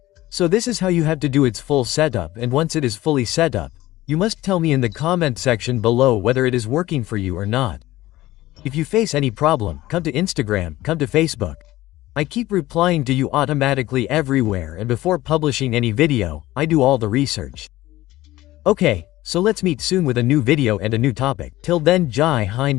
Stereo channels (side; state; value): right; quieter; 16.6 dB